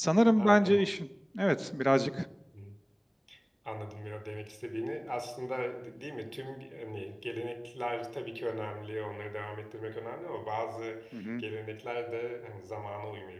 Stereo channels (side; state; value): both; identical; correlation 1.00